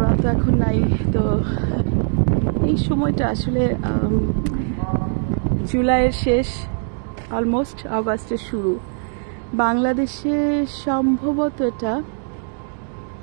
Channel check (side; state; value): left; silent; 60 dB below the other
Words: তো এখন নাই। তো এই সময়টা আসলে জুলাইয়ের শেষ, অলমোস্ট আগস্টের শুরু। বাংলাদেশে সম্ভবত এটা